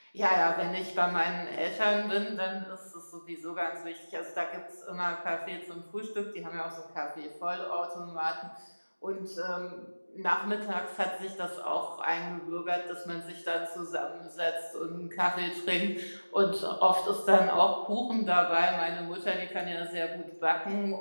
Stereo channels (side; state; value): both; inverted; correlation -1.00